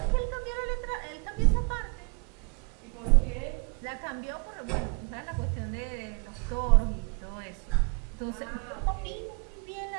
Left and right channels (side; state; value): left; quieter; 34.3 dB